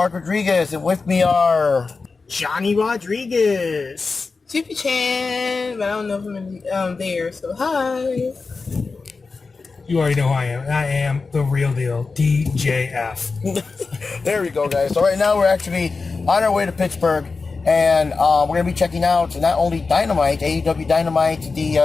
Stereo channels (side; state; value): right; quieter; 4.3 dB